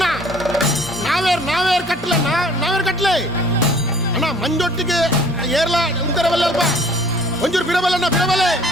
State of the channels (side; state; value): both; normal; correlation 0.53